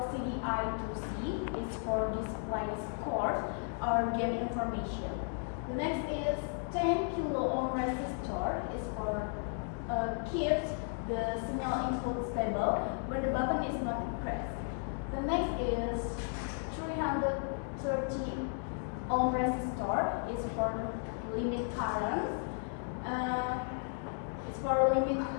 I2C. It's for display score or game information. The next is 10 kilo ohm resistor. Is for keeps the signal input stable when the button is not pressed. The next is 330 ohm resistor. Is for limit current. It's for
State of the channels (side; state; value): right; silent; 55 dB below the other